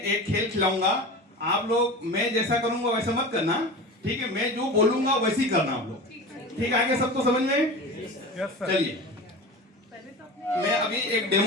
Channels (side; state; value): both; normal; correlation 0.31